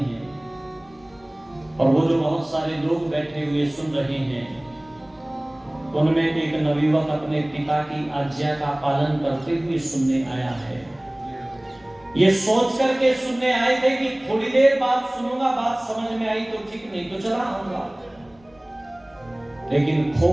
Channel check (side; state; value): left; noise; rumble, 30 dB below the sound